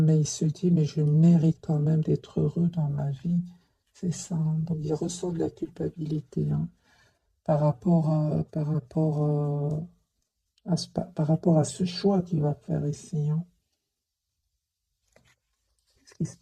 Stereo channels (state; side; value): identical; both; correlation 1.00